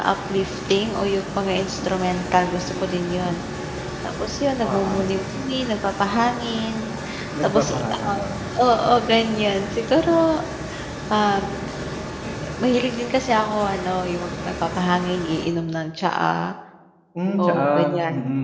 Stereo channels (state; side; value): identical; both; correlation 1.00